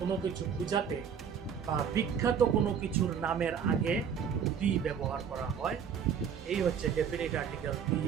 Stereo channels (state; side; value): quieter; left; 7.4 dB